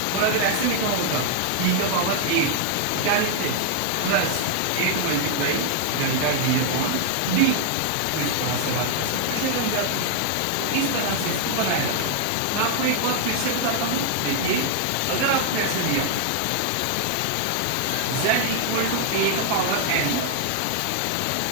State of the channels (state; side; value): different; both; correlation 0.00